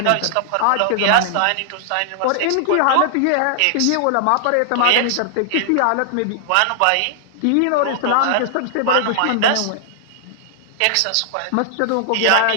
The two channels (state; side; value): different; both; correlation -0.01